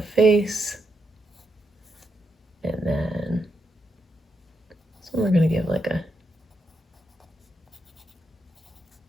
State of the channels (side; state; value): both; normal; correlation 0.82